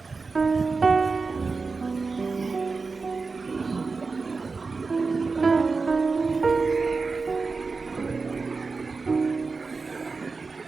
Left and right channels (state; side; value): quieter; left; 4.3 dB